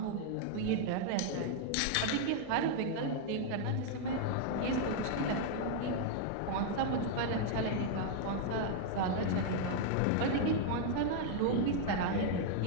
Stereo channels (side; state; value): both; different; correlation -0.01